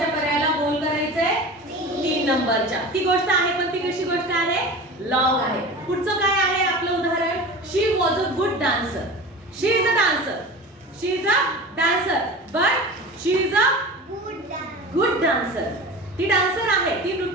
पर्यायाला बोल करायचंय? 3 नंबरच्या. ती गोष्ट आहे, पण ती कशी गोष्ट आहे? लॉंग आहे. पुढचं काय आहे आपलं उदाहरण? She was a good dancer. She is a dancer. She is a dancer, but she is a good dancer. ती डान्सर आहे, ती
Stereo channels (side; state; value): both; normal; correlation 0.34